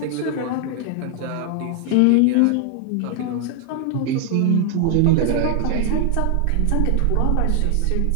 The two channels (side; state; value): both; different; correlation 0.00